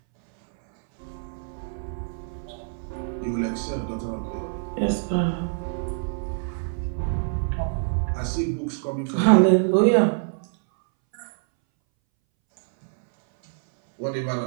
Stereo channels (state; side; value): silent; left; 62 dB below the other